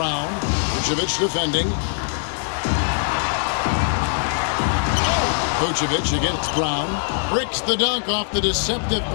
Vucevic defending. Vucevic against Brown. Bricks the dunk off the deceptive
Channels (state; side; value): silent; right; 61 dB below the other